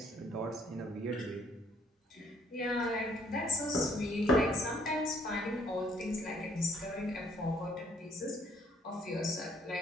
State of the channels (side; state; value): both; normal; correlation 0.64